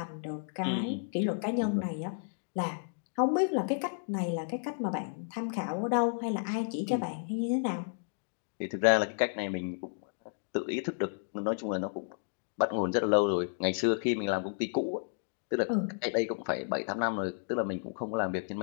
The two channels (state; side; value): silent; right; digital silence